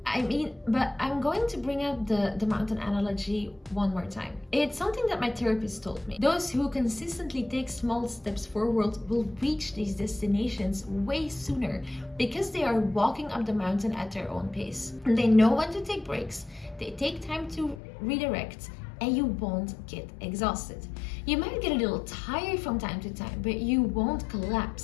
I mean, but I'm going to bring up the mountain analogy one more time. It's something that my therapist told me. Those who consistently take small steps forward will reach these destinations way sooner because they are walking up the mountain at their own pace. They know when to take breaks, they take time to redirect, and you won't get exhausted. You might get a little tired from time to time, but you won't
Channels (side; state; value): right; drops out; at 17.8 s